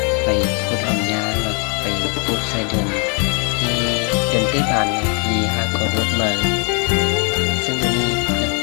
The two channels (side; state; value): right; quieter; 36.6 dB